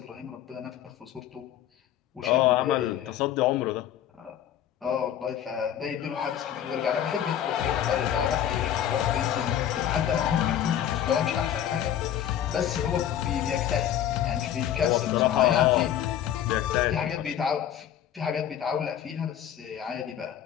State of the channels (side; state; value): right; quieter; 10.5 dB